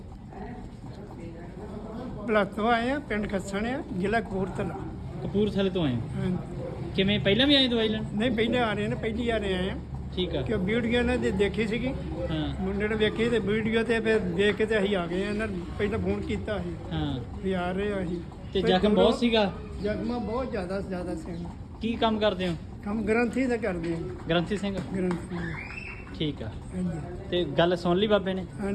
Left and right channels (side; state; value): both; identical; correlation 1.00